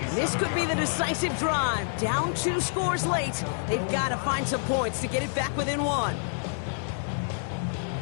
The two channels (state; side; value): silent; right; digital silence